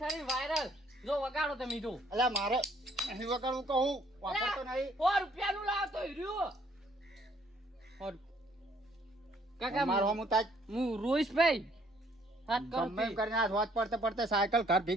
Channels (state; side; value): normal; both; correlation 0.63